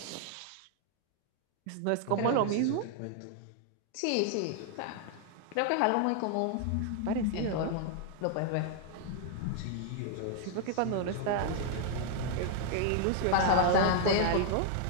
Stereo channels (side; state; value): both; different; correlation 0.00